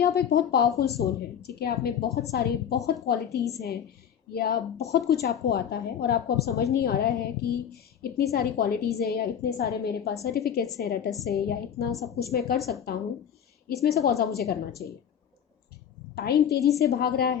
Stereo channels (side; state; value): right; quieter; 8.6 dB